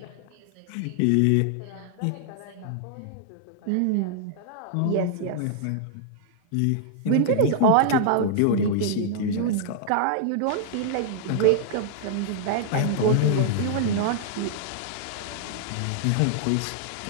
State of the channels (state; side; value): different; both; correlation -0.01